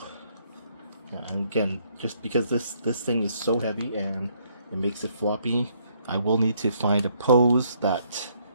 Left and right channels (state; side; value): inverted; both; correlation -0.69